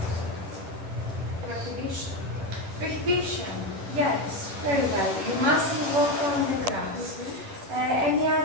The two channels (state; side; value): late; left; 10 ms